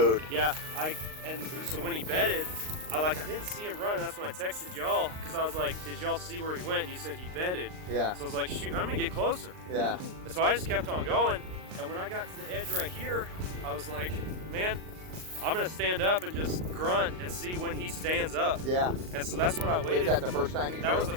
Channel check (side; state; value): left; late; 39 ms